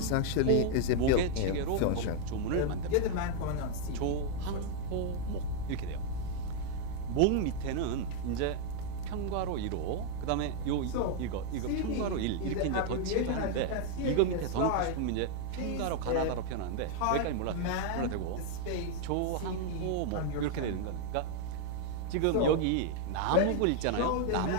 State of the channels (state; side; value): different; both; correlation 0.00